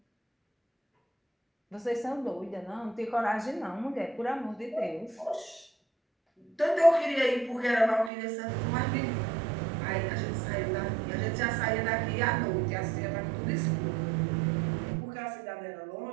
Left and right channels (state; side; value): drops out; left; at 8.1 s